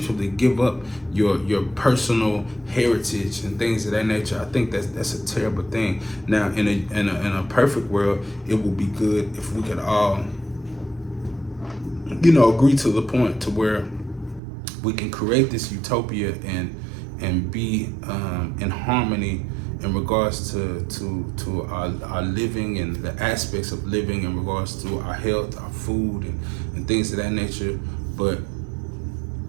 give up your personal heritage and things of that nature. I think that's a terrible thing. Now, in a perfect world, it would be good if we could all, you know, agree to the point to where we can create this utopia and be in harmony in regards to our living and the aspects of living in regards to our health, our food, and things of that nature. But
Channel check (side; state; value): left; drops out; at 14.4 s